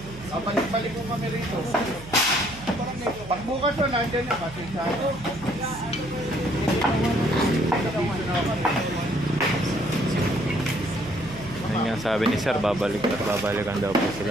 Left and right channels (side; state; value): right; noise; hum, 16 dB below the sound